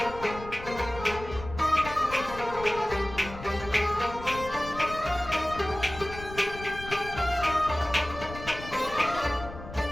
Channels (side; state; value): left; noise; rumble, 12 dB below the sound